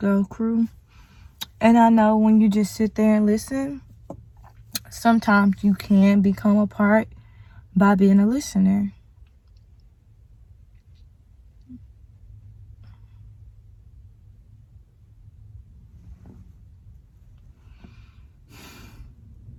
crew. And I know when you just sit there and listen, sometimes you can become a part by being a listener.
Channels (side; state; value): both; identical; correlation 1.00